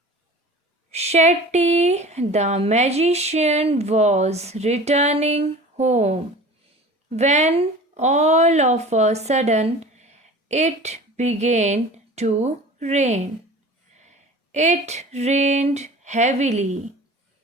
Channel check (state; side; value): normal; both; correlation 0.40